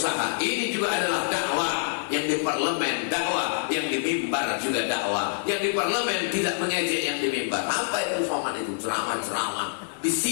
Ini juga adalah dakwah. Yang di parlemen dakwah, yang di mimbar juga dakwah. Yang di parlemen tidak mengejek yang di mimbar. Apa itu Somad itu? Ceramah-ceramah. Di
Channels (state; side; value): silent; right; digital silence